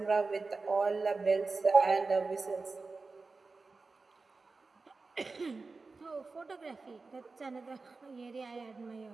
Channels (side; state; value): left; quieter; 4.0 dB